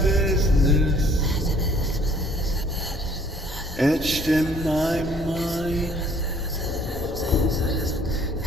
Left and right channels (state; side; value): normal; both; correlation 0.58